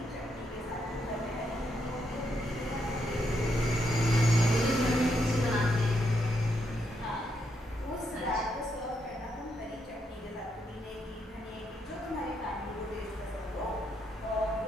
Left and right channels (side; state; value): both; normal; correlation 0.79